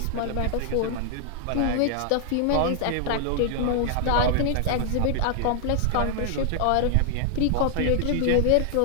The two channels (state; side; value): different; both; correlation 0.00